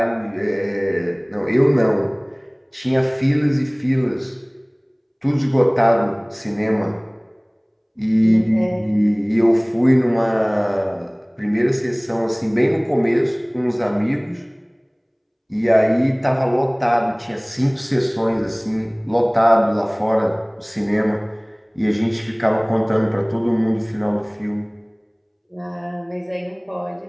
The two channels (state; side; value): identical; both; correlation 1.00